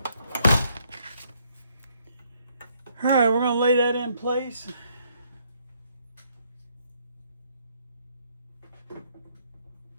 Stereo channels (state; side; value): inverted; both; correlation -0.70